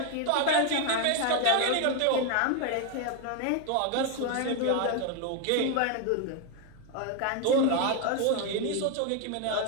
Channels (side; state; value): both; different; correlation 0.01